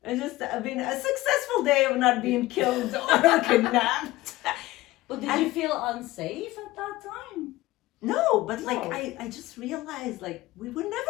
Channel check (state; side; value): quieter; right; 18.2 dB